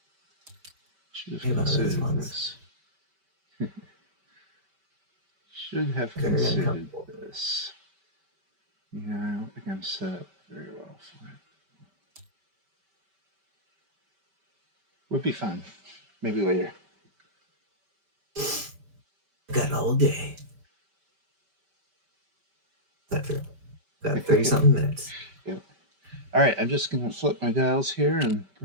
Should have Maybe one of those considered ones. this. Should have Good enough. considered this. Yeah, I don't think I'm set up very well for it. Would be fun. Maybe later. Got all day. That's true. Got 30 something minutes. Yep. All right, I'm just going to flip my dials here and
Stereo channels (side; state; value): left; late; 5.2 ms